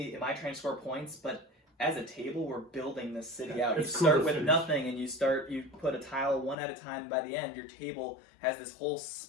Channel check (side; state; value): right; drops out; at 6.6 s